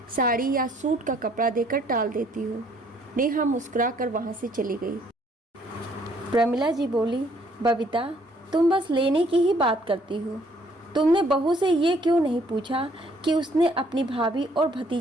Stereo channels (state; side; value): normal; both; correlation 0.64